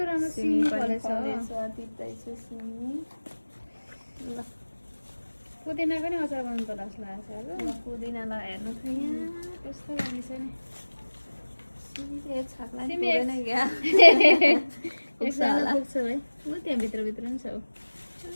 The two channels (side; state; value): both; inverted; correlation -1.00